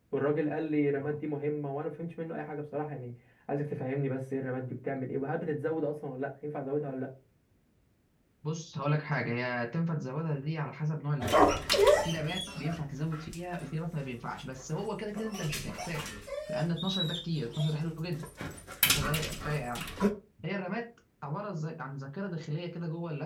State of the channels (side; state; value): both; identical; correlation 1.00